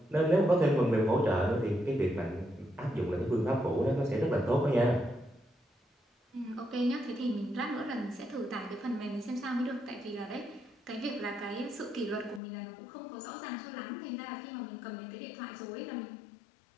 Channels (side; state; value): right; drops out; at 12.4 s